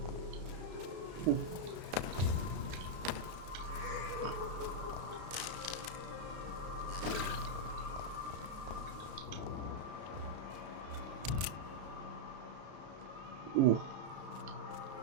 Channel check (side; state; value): left; late; 33 ms